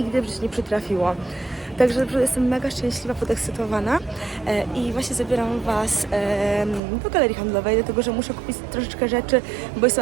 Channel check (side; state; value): left; drops out; at 6.8 s